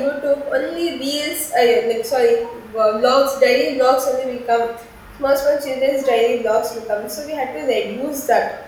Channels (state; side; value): identical; both; correlation 1.00